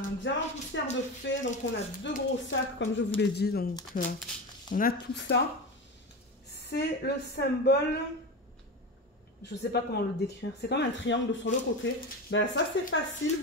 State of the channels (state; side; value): normal; both; correlation 0.23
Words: diamant poussière de fée. Donc, on a 2 gros sacs, comme je vous l'ai dit. Donc, on a tout ça. C'est le symbole... Je ne sais pas comment le décrire. C'est comme un triangle sur le côté. Ben, ça, c'est facile.